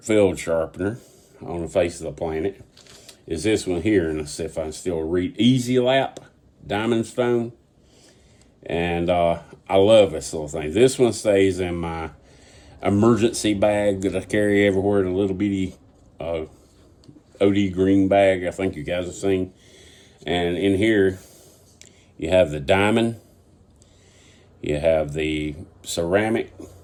field sharpener on the face of the planet is this one here, and let's see if I can still read. Easy Lap Diamond Stone, and I love this little thing. This one stays in my emergency bag that I carry everywhere, the little bitty OD green bag I think you guys have seen. And in here, you have the diamond, you have the ceramic.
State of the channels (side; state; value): both; identical; correlation 1.00